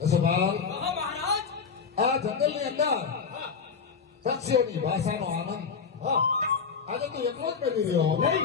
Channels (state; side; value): quieter; right; 5.8 dB